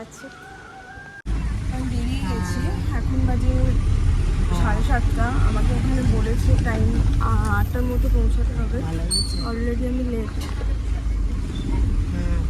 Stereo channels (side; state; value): both; identical; correlation 1.00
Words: আমি বেরিয়ে গেছি, এখন বাজে 7:30। আমাকে এখানে বলেছে টাইম 8টার মতো পৌঁছাতে হবে। অলরেডি আমি লেট,